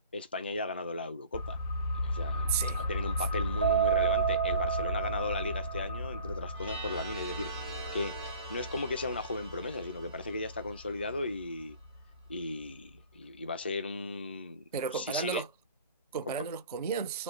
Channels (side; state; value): both; inverted; correlation -0.47